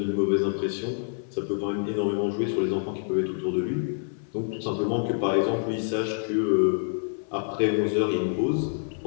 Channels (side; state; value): right; silent; 60 dB below the other